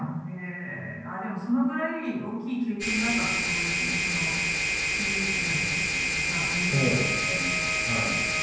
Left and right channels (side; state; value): both; identical; correlation 1.00